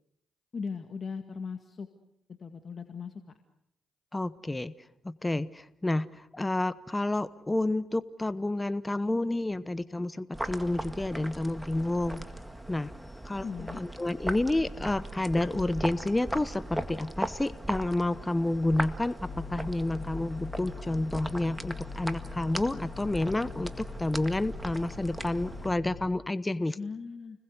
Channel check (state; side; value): normal; both; correlation 0.98